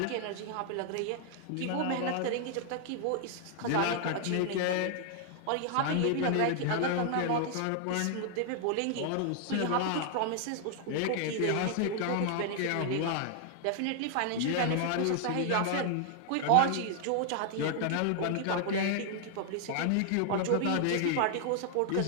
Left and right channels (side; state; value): both; different; correlation 0.00